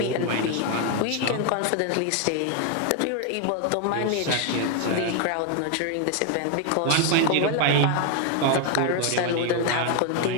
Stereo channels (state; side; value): different; both; correlation 0.00